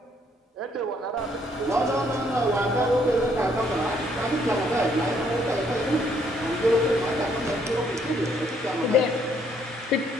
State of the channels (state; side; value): normal; both; correlation 0.68